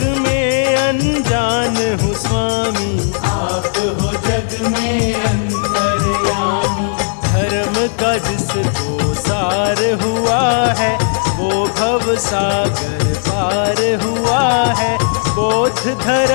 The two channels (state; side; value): silent; right; digital silence